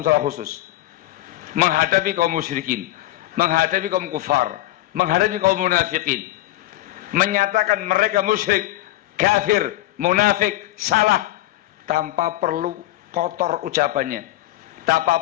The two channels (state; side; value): quieter; right; 16.0 dB